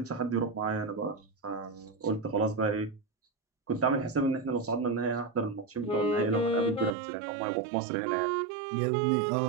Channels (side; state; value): left; drops out; at 7.0 s